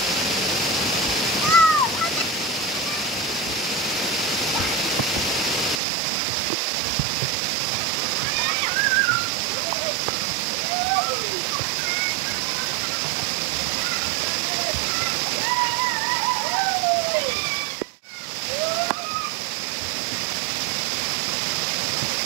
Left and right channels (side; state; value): left; drops out; at 5.8 s